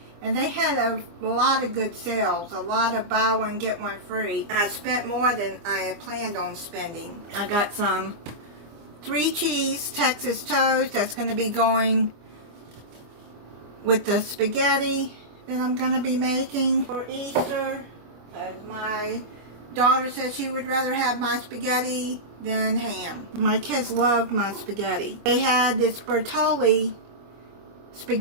And they had a lot of good sales, a lot of buy one, get one free. I spent more than I had planned on spending. I got some 3 cheese Texas toast that's going to be going with the spaghetti that I'm going to be making for Easter. My daughter said she would rather have my spaghetti than ham. My kids love my spaghetti. They had this Bertolli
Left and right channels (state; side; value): late; left; 24 ms